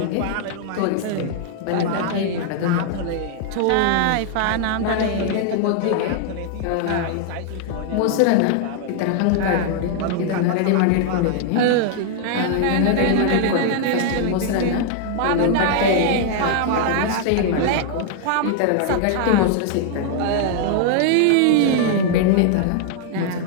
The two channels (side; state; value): both; different; correlation 0.00